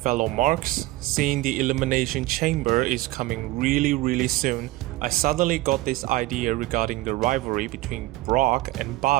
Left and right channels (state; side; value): quieter; left; 18.4 dB